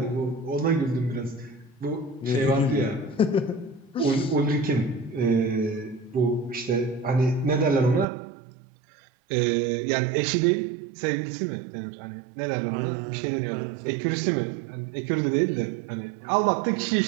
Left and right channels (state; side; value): drops out; left; at 8.1 s